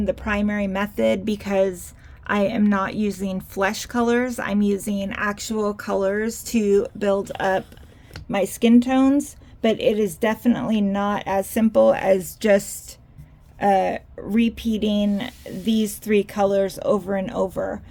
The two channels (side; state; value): both; identical; correlation 1.00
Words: the primary method because I am not using flesh colors. I'm using actual colors to build up my skin tones, but it is definitely not as simple as just repeating these three colors over and over.